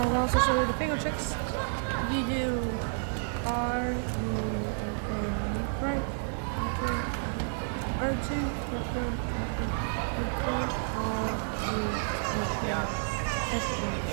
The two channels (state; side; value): silent; left; digital silence